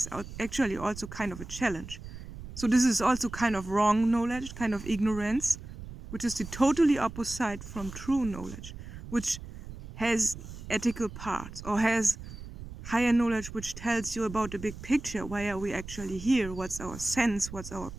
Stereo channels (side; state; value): right; noise; rumble, 12 dB below the sound